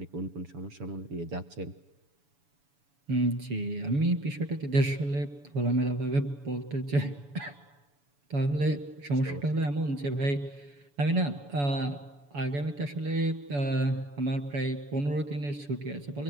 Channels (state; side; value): late; left; 7.0 ms